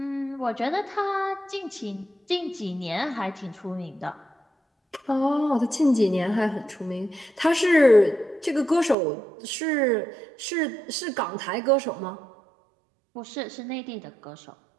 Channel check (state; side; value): drops out; left; at 9.0 s